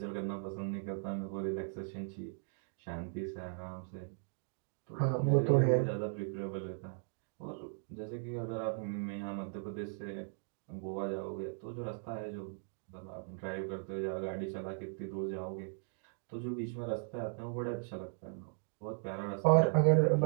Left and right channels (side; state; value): left; silent; digital silence